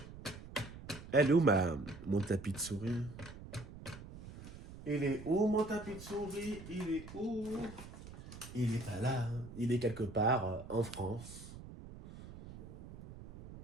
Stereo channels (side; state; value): right; noise; rumble, 14 dB below the sound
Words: Elle est où mon tapis de souris? Il est où mon tapis de souris? Il est où? Il est pas là. Il est quelque part en France.